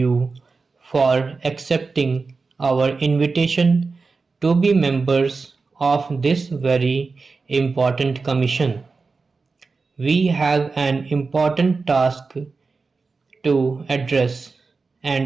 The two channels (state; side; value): quieter; left; 4.3 dB